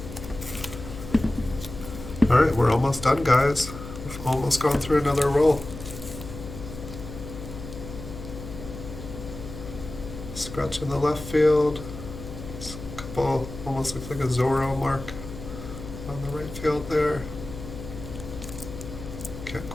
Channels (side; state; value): left; noise; hum, 11 dB below the sound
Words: Alright, we're almost done, guys. We've almost gone through another roll. Scratch in the left field. A couple, almost looks like a Zorro mark on the right field there. Can't